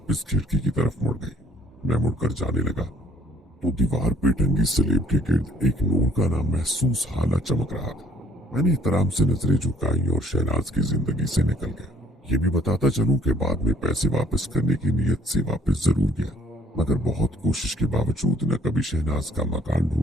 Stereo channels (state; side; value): normal; both; correlation 0.58